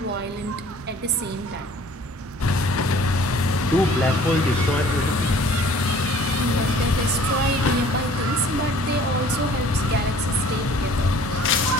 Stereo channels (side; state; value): both; normal; correlation 0.52